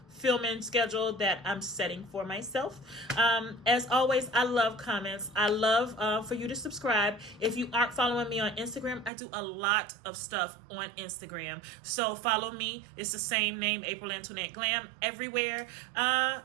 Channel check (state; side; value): drops out; left; at 9.1 s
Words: filming schedule that I'm setting for myself. As always, I love comments. I love for you to subscribe. If you aren't following me on Instagram, I do a lot of stuff on Instagram. So follow me. It's the same name, April Antoinette Glam, everywhere.